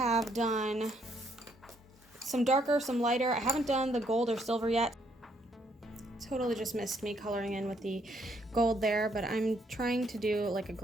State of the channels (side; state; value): both; normal; correlation 0.71